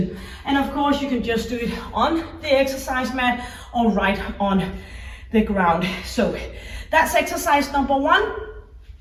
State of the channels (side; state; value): both; identical; correlation 1.00